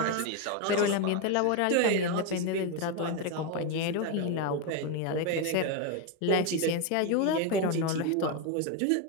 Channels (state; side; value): different; both; correlation 0.02